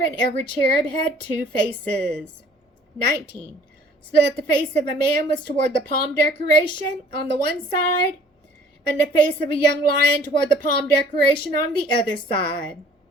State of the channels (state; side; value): normal; both; correlation 0.55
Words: every cherub had 2 faces. 19. So that the face of a man was toward the palm decoration on the one side, and the face of a young lion toward the palm decoration on the other side.